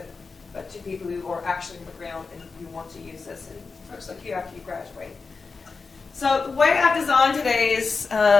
but to people who are actually on the ground and who want to use this, and folks like you after you graduate. So the way I've designed today's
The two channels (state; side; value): quieter; right; 4.5 dB